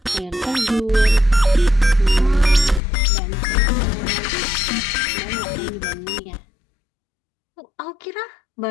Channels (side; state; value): right; drops out; at 2.8 s